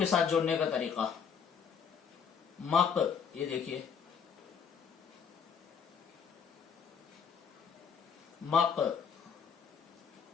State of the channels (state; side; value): quieter; right; 6.9 dB